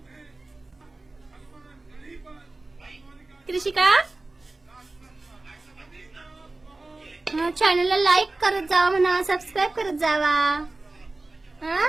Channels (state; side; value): quieter; left; 3.1 dB